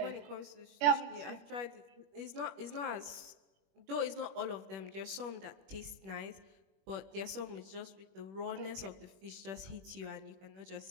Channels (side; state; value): left; late; 21 ms